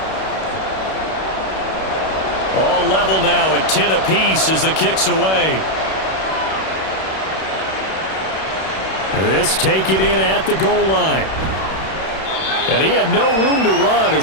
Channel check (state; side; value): late; right; 31 ms